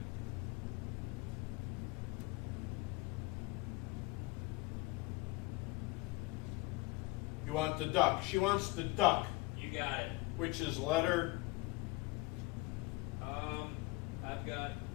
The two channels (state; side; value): quieter; right; 22.6 dB